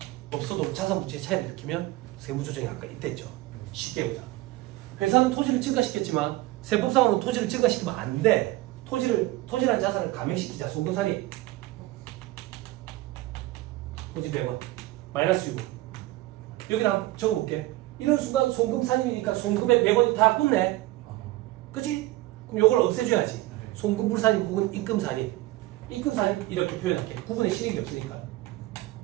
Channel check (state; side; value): quieter; left; 17.8 dB